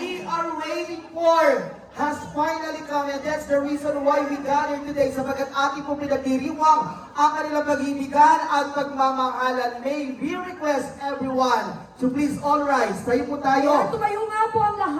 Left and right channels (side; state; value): both; identical; correlation 1.00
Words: are waiting for has finally come, and that's the reason why we gathered today sapagkat ating po pinagdiriwang ang kanilang pag-ibigan at pagmamahalan. May we request everyone to please all rise. Tayo po tayo. Tumayo nga po ang